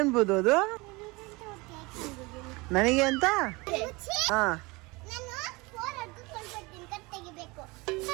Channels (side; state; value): left; quieter; 24.7 dB